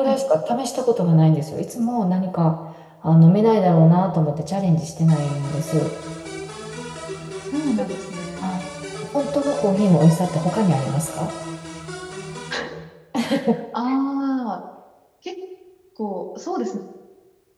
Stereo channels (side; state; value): both; identical; correlation 1.00